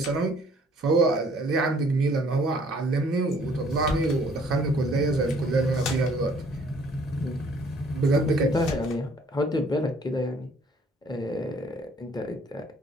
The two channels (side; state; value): both; normal; correlation 0.59